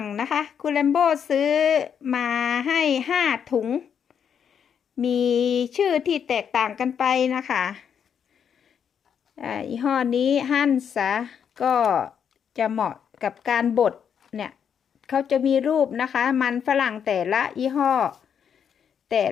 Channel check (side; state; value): right; quieter; 7.8 dB